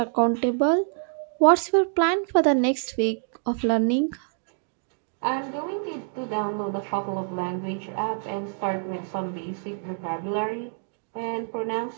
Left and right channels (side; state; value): left; silent; digital silence